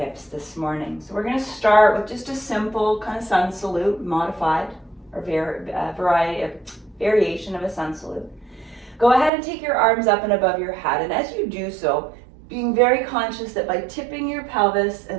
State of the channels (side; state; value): left; drops out; at 9.3 s